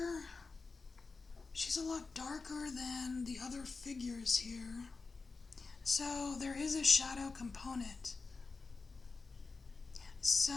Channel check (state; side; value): quieter; right; 4.2 dB